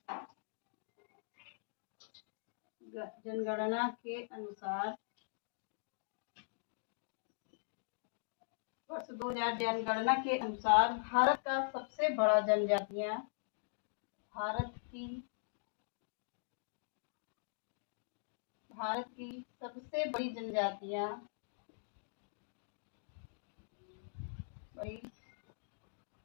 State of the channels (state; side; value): silent; right; digital silence